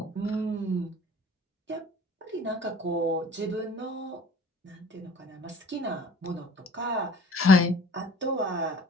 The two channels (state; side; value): normal; both; correlation 0.48